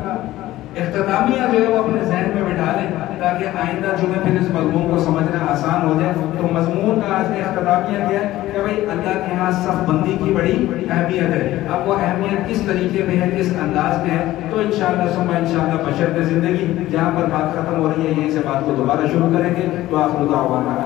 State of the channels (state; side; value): quieter; right; 15.6 dB